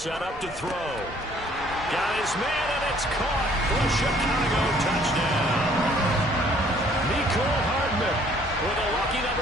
up to throw. Got his man, and it's caught for a Chicago touchdown. Mecole Hardman with a lucky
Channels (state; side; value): normal; both; correlation 0.60